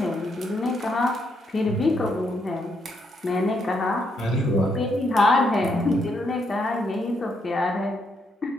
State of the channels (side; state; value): both; normal; correlation 0.77